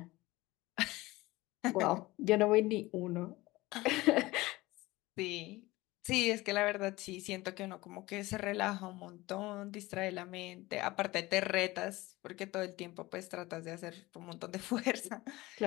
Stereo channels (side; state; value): right; quieter; 19.9 dB